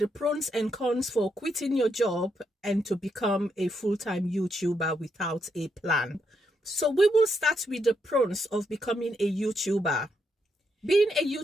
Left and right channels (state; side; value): normal; both; correlation 0.79